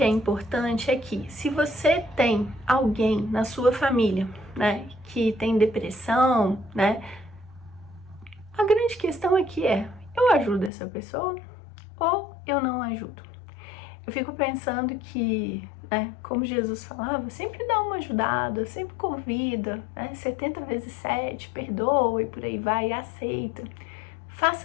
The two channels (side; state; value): right; drops out; at 10.7 s